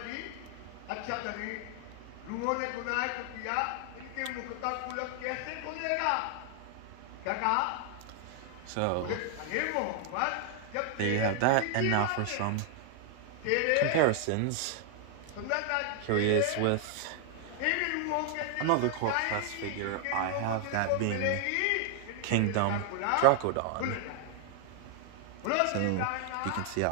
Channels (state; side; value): different; both; correlation 0.00